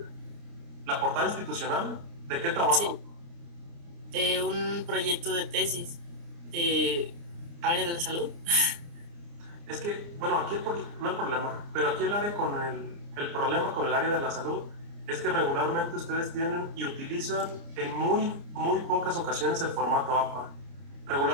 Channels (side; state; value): left; late; 29 ms